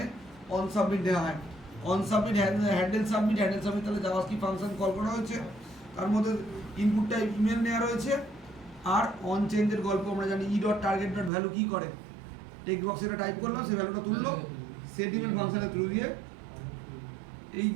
অন সাবমিট দেওয়া হয়। অন সাবমিট, হ্যান্ডেল সাবমিট, তাহলে জাভাস্ক্রিপ্ট ফাংশন কল করা হয়েছে, তার মধ্যে ইনপুটটা ইমেল নেওয়া রয়েছে। আর অন চেঞ্জের গল্প আমরা জানি, e.target.value কি করে, টেক্সট বক্সে এটা টাইপ করলাম, সেই ভ্যালুটা তুললো, সেট ইমেল ফাংশনের থ্রু দিয়ে।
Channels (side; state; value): left; drops out; at 11.3 s